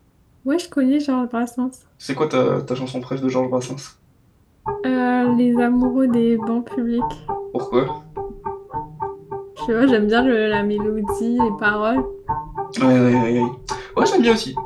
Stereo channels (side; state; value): both; identical; correlation 1.00